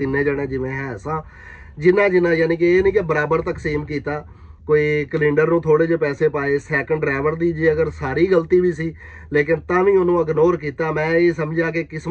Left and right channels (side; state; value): both; identical; correlation 1.00